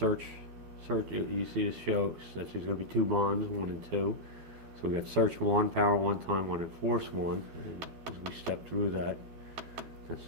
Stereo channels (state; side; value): late; left; 12 ms